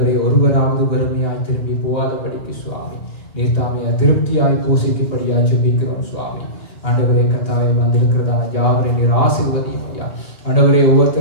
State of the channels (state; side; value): late; right; 2.7 ms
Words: ஒருவராவது வறுமையாய் திரும்பி போகாதபடிக்கு சுவாமி நீர் தாமே திருப்தியாய் போஷிக்கும்படியாய் ஜெபிக்கிறோம் சுவாமி. ஆண்டவரே கர்த்தாவே, வந்திருக்கிறதான யாவரை நீர் ஆசீர்வதியும் ஐயா. ஆண்டவரே,